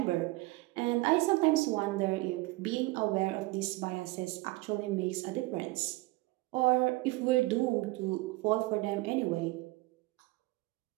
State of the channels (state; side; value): quieter; left; 21.6 dB